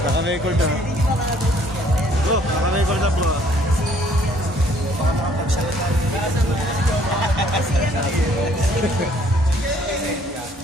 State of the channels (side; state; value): both; normal; correlation 0.61